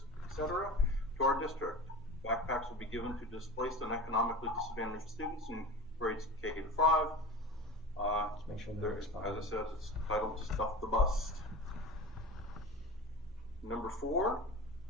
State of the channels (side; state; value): both; normal; correlation 0.32